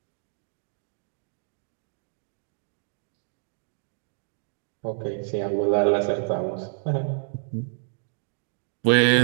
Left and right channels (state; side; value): silent; left; digital silence